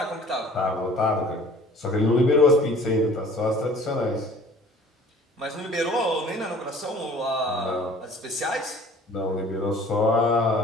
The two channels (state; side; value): normal; both; correlation 0.50